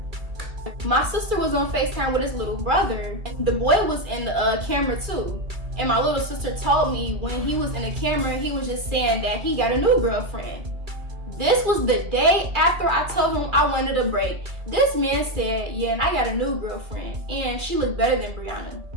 My sister was on FaceTime with his little brother. The boy was in the camera too. And my little sister told me when he was in the camera, he was just saying that he got a new girlfriend. This was the day after I told him I wanted a break. This man said, yeah, and I got a new girlfriend, and she looked better than Brianna.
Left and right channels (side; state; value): left; late; 2.3 ms